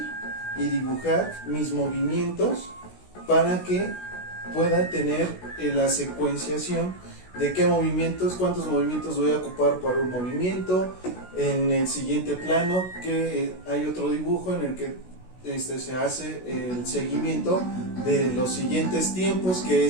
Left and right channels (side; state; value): right; late; 16 ms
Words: y dibujar mis movimientos para que pueda tener la secuenciación de qué movimientos, cuántos movimientos voy a ocupar para un movimiento. En el siguiente plano que hay otro dibujo en el que se hace el seguimiento de los siguientes tiempos que